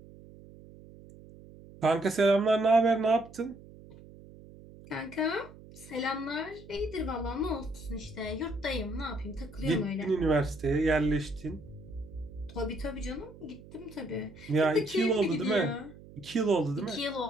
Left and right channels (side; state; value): right; noise; hum, 19 dB below the sound